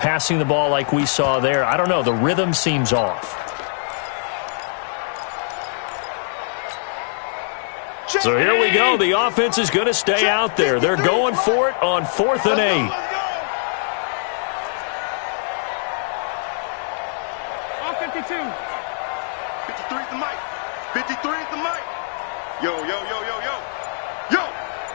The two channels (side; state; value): right; silent; digital silence